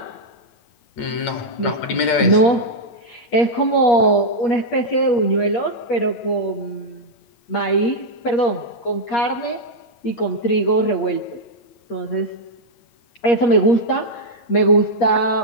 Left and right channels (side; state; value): right; late; 8.7 ms